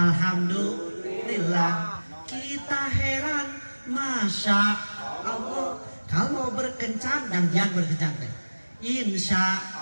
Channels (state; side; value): inverted; both; correlation -1.00